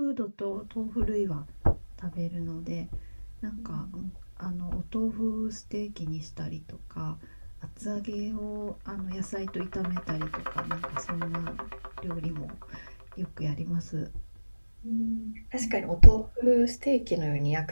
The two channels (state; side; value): inverted; both; correlation -1.00